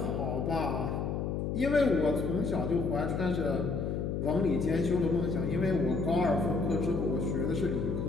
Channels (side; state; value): left; noise; hum, 1 dB below the sound